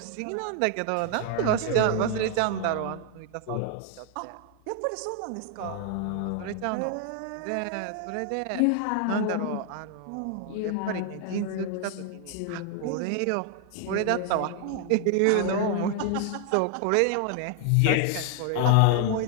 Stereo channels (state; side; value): different; both; correlation 0.00